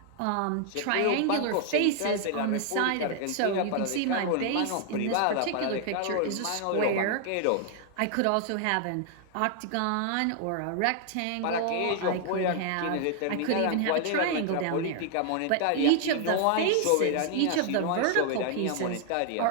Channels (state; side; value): different; both; correlation 0.00